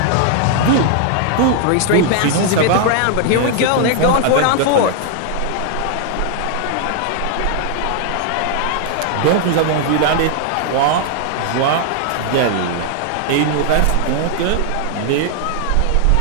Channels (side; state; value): both; different; correlation 0.00